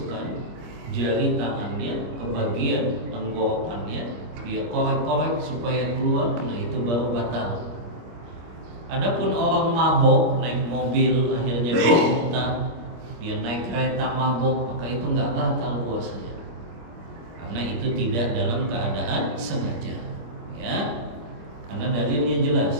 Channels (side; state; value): left; late; 26 ms